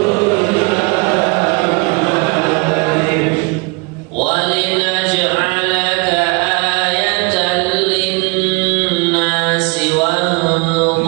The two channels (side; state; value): left; quieter; 28.7 dB